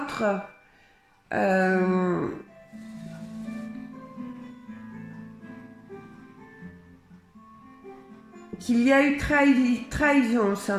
qu'il y a eu trahison au sein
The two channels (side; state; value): both; identical; correlation 1.00